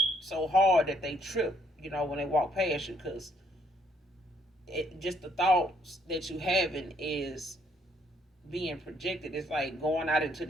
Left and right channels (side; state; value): both; normal; correlation 0.69